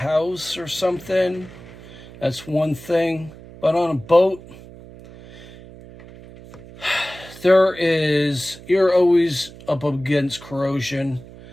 or something. That's one thing. But on a boat, you're always up against corrosion.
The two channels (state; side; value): noise; right; hum, 18 dB below the sound